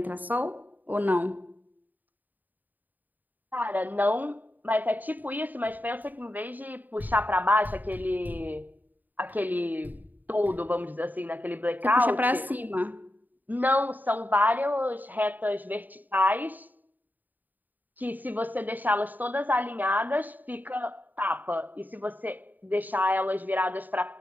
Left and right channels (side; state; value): left; late; 0.085 ms